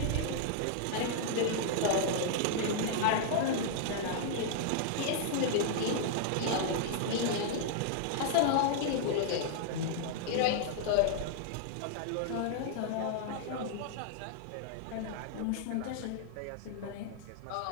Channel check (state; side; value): different; both; correlation -0.01